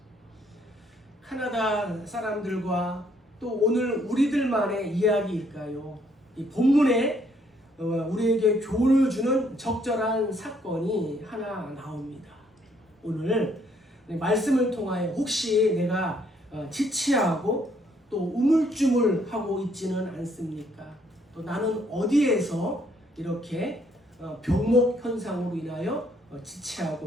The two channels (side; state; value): both; normal; correlation 0.68